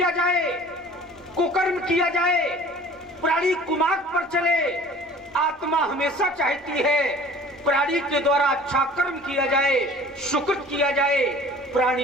जाए, कुकर्म किया जाए, प्राणी कुमार्ग पर चले। आत्मा हमेशा चाहती है प्राणी के द्वारा अच्छा कर्म किया जाए, सुकृत किया जाए,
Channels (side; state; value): both; normal; correlation 0.47